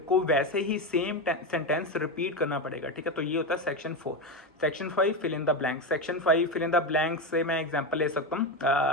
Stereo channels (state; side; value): normal; both; correlation 0.14